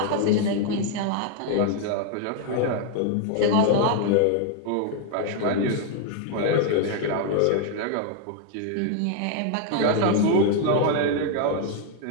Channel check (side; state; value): both; different; correlation 0.00